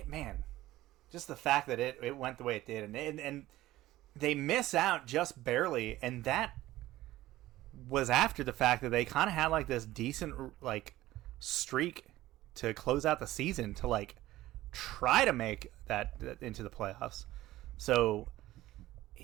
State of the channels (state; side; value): quieter; left; 16.1 dB